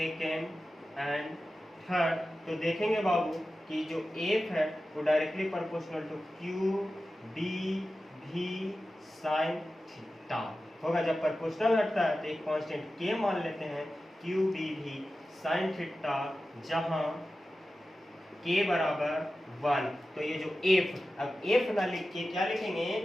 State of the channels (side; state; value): both; normal; correlation 0.94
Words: and third, तो देखेंगे बाबू कि जो एफ है वो directly proportional to Q B v sine theta होगा। जब प्रोपोर्शनल हटता है तो एक कांस्टेंट के मान लेते हैं, Q B v sine theta, जहां के बराबर 1। तो ये जो एफ, अब एफ ना लिख के क्या लिखेंगे,